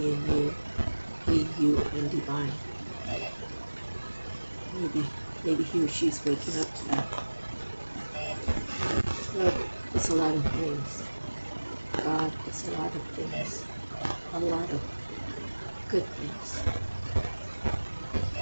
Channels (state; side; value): inverted; both; correlation -1.00